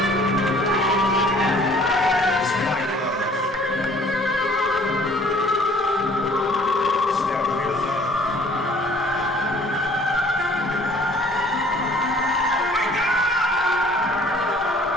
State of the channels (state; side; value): normal; both; correlation 0.55